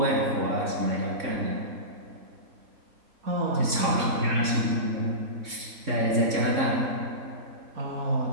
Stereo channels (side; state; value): left; late; 3.6 ms